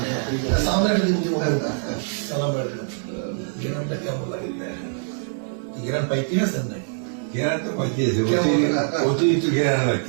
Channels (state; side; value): silent; left; 59 dB below the other